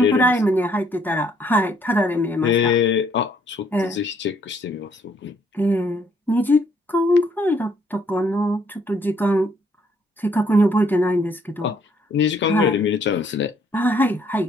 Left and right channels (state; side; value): normal; both; correlation 0.67